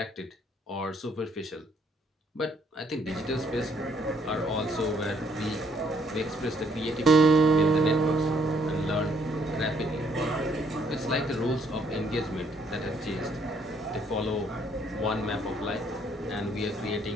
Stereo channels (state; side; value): normal; both; correlation 0.67